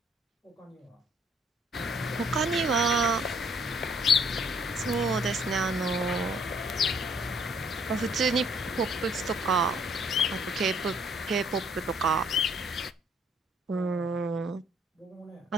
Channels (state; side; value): normal; both; correlation 0.62